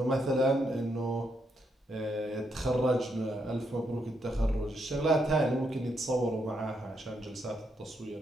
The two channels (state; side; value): normal; both; correlation 0.78